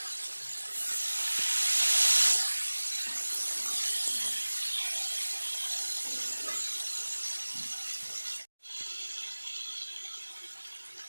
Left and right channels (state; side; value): inverted; both; correlation -1.00